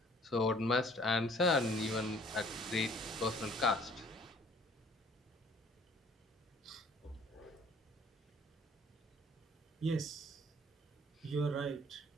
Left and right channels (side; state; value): both; normal; correlation 0.56